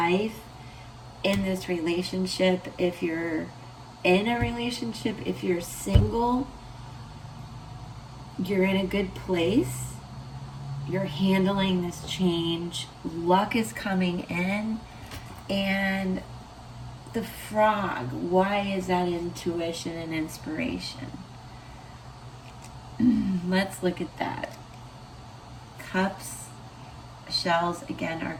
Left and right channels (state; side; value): identical; both; correlation 1.00